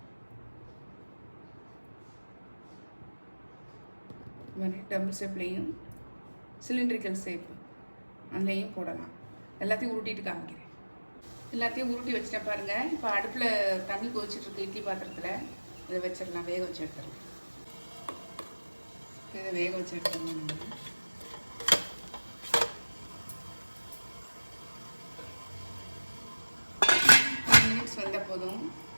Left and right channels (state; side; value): inverted; both; correlation -1.00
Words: இது மாதிரி டம்பிள் ஷேப்லேயும் சிலிண்ட்ரிக்கல் ஷேப் அதுலேயும் போடலாம். எல்லாத்தையும் உருட்டிட்டு காமிக்கிறேன். எல்லாத்தையும் உருட்டி வச்சுட்டேன் பாருங்கள். இப்போ அடுப்பில் தண்ணி கொதிச்சிட்ருக்கு இட்லி பாத்திரத்தில். இதை வச்சிடலாம், வேக வச்சு எடுத்துடலாம். இதை வேக வச்சு எடுத்துடலாம். நம்ம 10 மினிட்ஸ் வந்தால் போதும்.